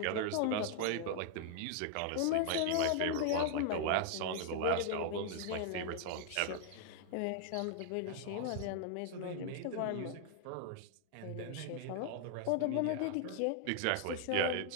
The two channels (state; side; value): different; both; correlation -0.01